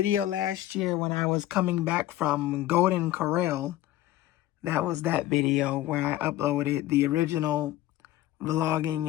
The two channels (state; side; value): quieter; right; 14.7 dB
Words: last year when I was coming back from Golden Corral. That was that video where I uploaded the original